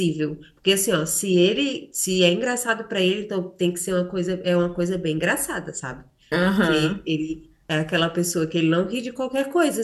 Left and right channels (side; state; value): both; identical; correlation 1.00